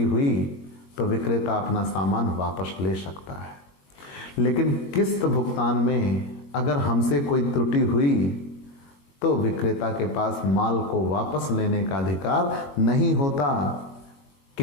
हुई तो विक्रेता अपना सामान वापस ले सकता है, लेकिन किस्त भुगतान में अगर हमसे कोई त्रुटि हुई तो विक्रेता के पास माल को वापस लेने का अधिकार नहीं होता,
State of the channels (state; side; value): late; right; 22 ms